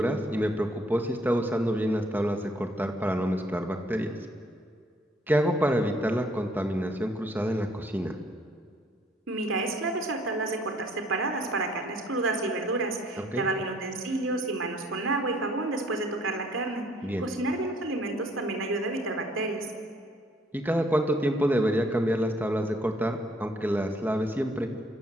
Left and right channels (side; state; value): both; normal; correlation 0.63